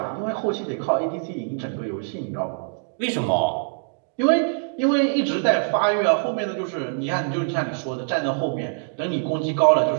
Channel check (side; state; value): left; silent; digital silence